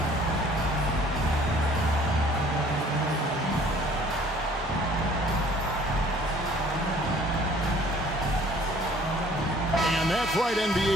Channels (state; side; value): normal; both; correlation 0.54